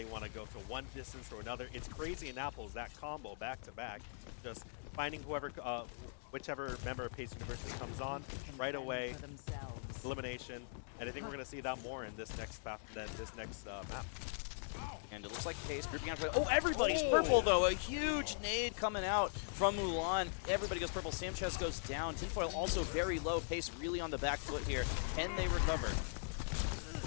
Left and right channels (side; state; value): right; silent; digital silence